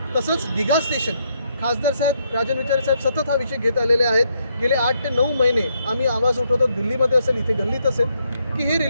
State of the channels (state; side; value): inverted; both; correlation -0.75